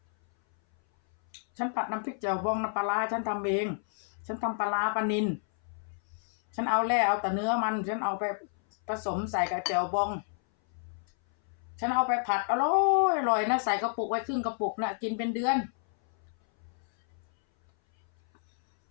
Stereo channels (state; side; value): silent; right; 58 dB below the other